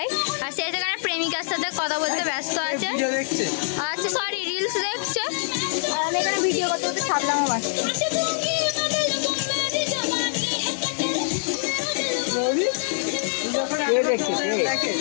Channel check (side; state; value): right; silent; digital silence